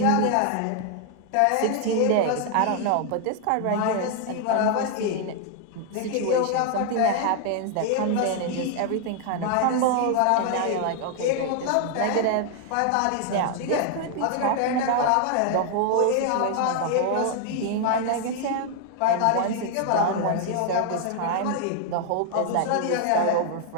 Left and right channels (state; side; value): different; both; correlation 0.00